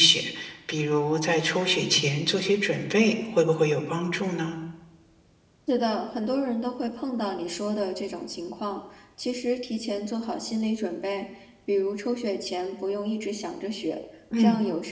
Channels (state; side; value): identical; both; correlation 1.00